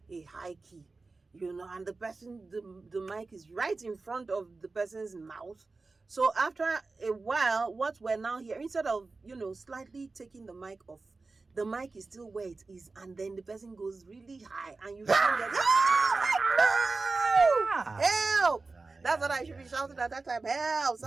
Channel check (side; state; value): left; quieter; 3.8 dB